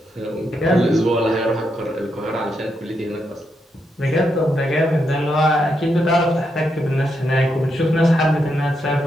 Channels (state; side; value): normal; both; correlation 0.81